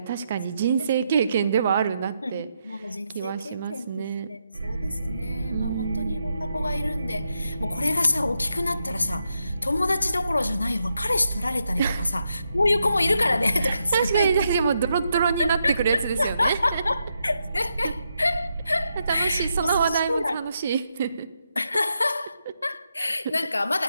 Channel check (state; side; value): inverted; both; correlation -0.82